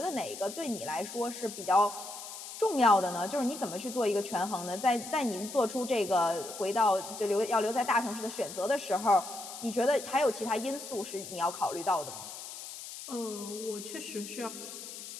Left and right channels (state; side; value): noise; left; hiss, 11 dB below the sound